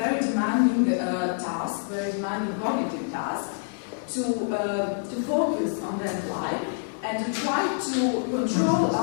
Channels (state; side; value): silent; right; digital silence